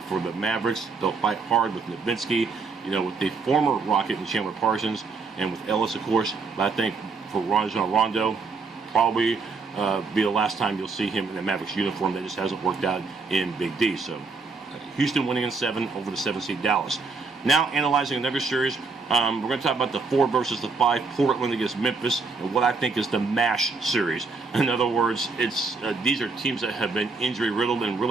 the Mavericks, they'll fight hard with Nowitzki, you know, with the former Rocket and Chandler Parsons, and with Ellis, of course. But I think for Rajon Rondo, probably be the last time you'll see him in a Mavericks uniform. That just hasn't worked out in Big D. So Houston winning in 7 over the 7 seed Dallas. Now analyzing another series, we're going to talk about the 4 versus the 5, Portland against Memphis, and what I think is the MASH series. In other words, it's these are teams that have been injury riddled and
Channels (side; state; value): left; quieter; 4.4 dB